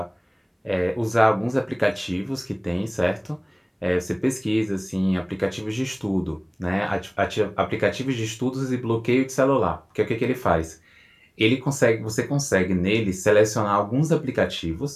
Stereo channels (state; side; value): identical; both; correlation 1.00